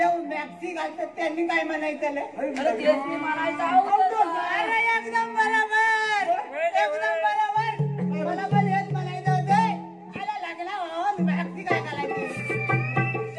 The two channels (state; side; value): identical; both; correlation 1.00